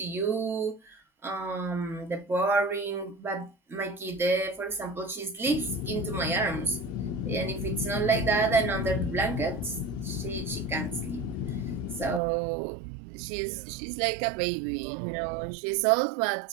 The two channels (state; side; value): drops out; left; at 12.2 s